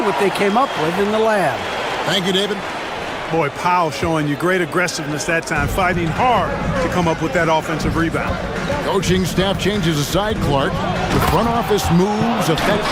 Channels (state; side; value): identical; both; correlation 1.00